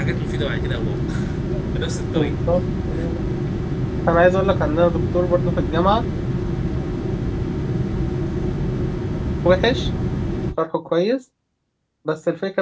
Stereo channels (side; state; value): both; identical; correlation 1.00